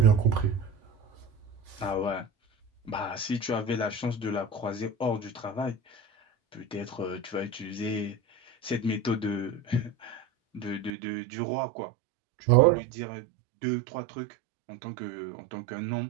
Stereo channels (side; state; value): left; drops out; at 10.9 s